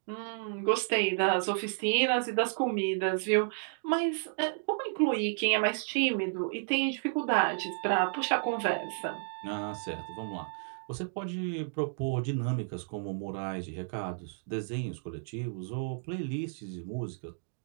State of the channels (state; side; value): silent; left; digital silence